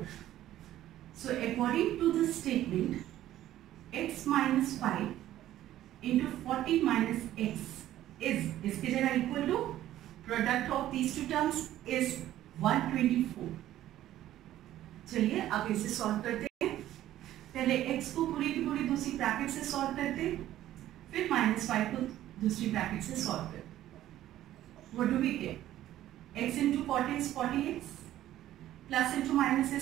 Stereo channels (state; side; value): quieter; left; 13.3 dB